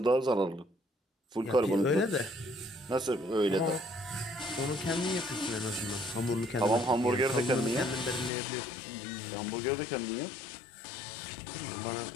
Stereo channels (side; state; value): right; drops out; at 8.3 s